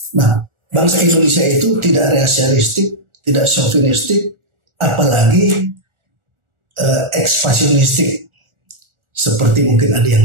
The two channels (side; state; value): left; late; 1.4 ms